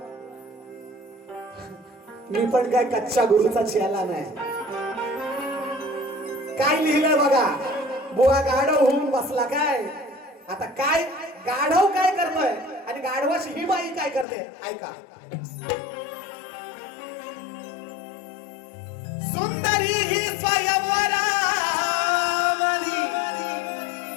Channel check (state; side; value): drops out; right; at 14.2 s